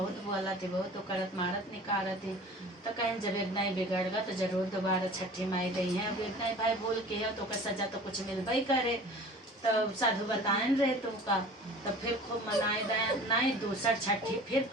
बोला थे बहुत तो करत मारत निकारत थे। तो कहें जब एक नहीं बिगड़ गया तो जरूर दोबारा छठी माई गई है। अब एक नहीं भाई बोल के है तो सजा तो कुछ मिलबे करे। तो साधु बताएं रहे तुमका। तो फिर खूब मनाए नहीं दूसर छठी फिर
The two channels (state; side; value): normal; both; correlation 0.43